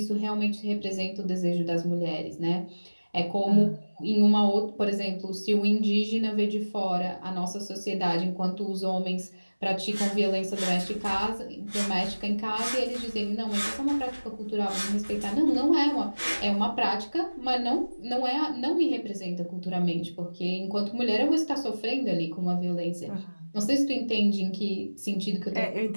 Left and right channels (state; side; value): inverted; both; correlation -1.00